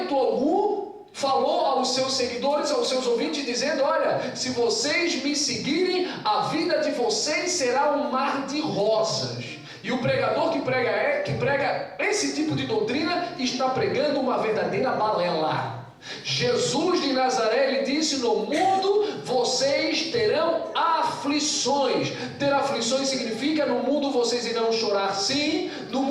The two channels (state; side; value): identical; both; correlation 1.00